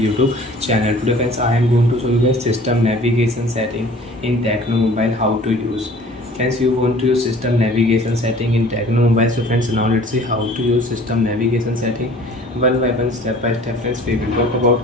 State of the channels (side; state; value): both; normal; correlation 0.49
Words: channel. Today friends, I am going to show you guys system navigation setting in Tecno Mobile, how to use. Friends, you want to use system navigation setting in Tecno Mobile. So friends, now let's see how to use system navigation setting one by one, step by step. Friends, we will talk about.